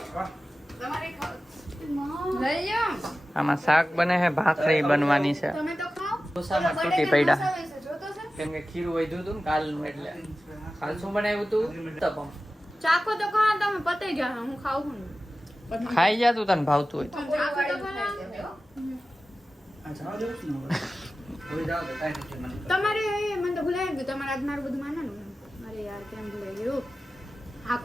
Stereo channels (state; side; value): normal; both; correlation 0.95